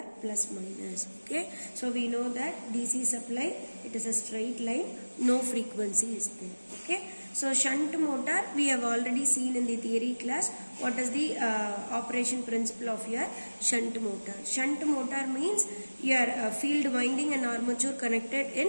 plus minus. Okay, so we know that DC supply, it is a straight line, no frequency is there. Okay, so shunt motor we have already seen in the theory class. What is the operation principle of your shunt motor? Shunt motor means your field winding and armature connected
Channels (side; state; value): both; inverted; correlation -1.00